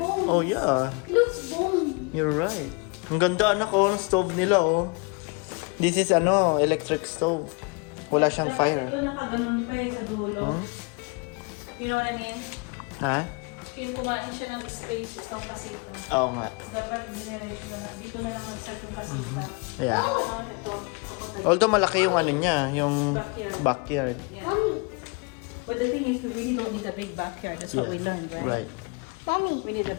Oh, yeah. It looks bone. You're right. Ang ganda, anak, oh, ng stove nila, oh. This is, electric stove. Wala siyang fire. Ito nakaganon pa eh sa dulo. You know what I mean? Ha? Kaya kumain siya ng space, itong kasita. Oo nga. Dapat generation na lang. Dito na lang mag-start yung kasita. Yeah. Ano ito? Although malaki yung ano niya, yung backyard. Yeah. Mommy, But the thing is, we really don't need a big backyard. That's what we learned, right? Right. Mommy. We need a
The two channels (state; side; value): quieter; right; 30.8 dB